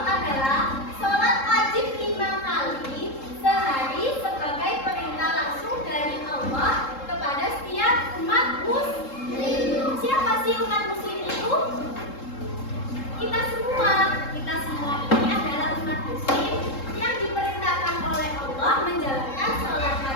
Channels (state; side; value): late; right; 3.7 ms